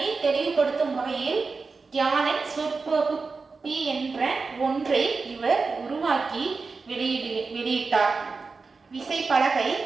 தெளிவுபடுத்தும் வகையில் யாழன் சொற்பகுப்பி என்ற ஒன்றை இவர் உருவாக்கி வெளியிட்டார். விசைப்பலகை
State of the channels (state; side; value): quieter; left; 4.4 dB